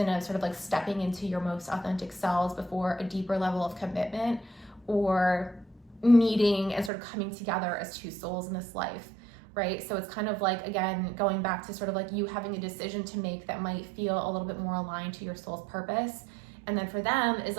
of sort of like stepping into your most authentic selves before a deeper level of commitment or meeting and sort of coming together as 2 souls in this life, right? So it's kind of like, again, going back to sort of like you having a decision to make that might feel a little bit more aligned to your soul's purpose. And then for them is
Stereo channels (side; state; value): left; drops out; at 6.9 s